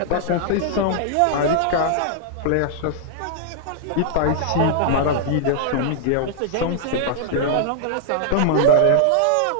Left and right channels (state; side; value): different; both; correlation -0.01